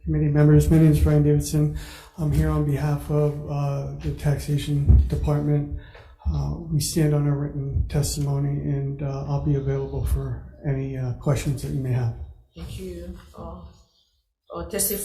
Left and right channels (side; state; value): both; identical; correlation 1.00